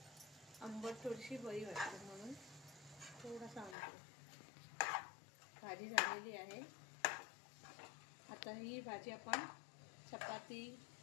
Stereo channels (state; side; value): drops out; right; at 3.8 s